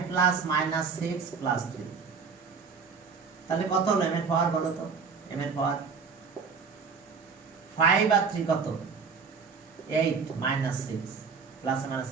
প্লাস -6 প্লাস 3, তাহলে কত হলো m এর পাওয়ার বলো তো? m এর পাওয়ার 5 আর 3 কত? 8 -6 প্লাস মাইনাস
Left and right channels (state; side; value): quieter; left; 5.4 dB